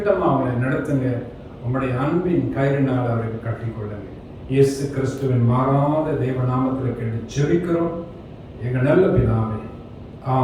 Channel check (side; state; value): both; identical; correlation 1.00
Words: அவங்களை நடத்துங்க. உங்களுடைய அன்பின் கயிறினால் அவர்கள் கட்டிக்கொள்ளுங்க. இயேசு கிறிஸ்துவின் மாறாத தேவ நாமத்தில் கேட்டு ஜெபிக்கிறோம் எங்கள் நல்ல பிதாவே.